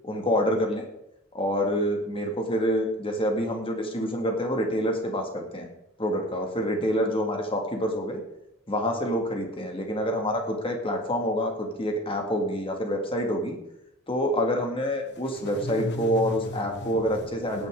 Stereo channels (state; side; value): normal; both; correlation 0.40